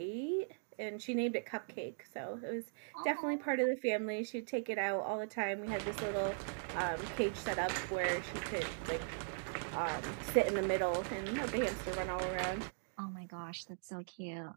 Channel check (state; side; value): silent; left; digital silence